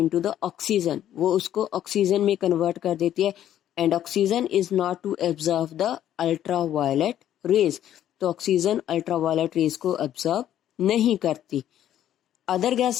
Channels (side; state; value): right; quieter; 11.4 dB